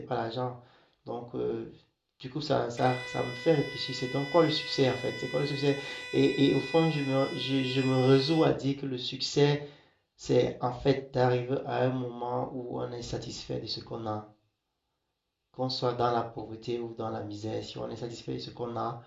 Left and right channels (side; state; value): both; identical; correlation 1.00